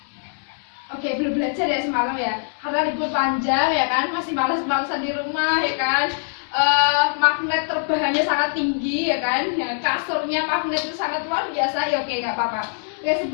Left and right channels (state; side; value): silent; right; digital silence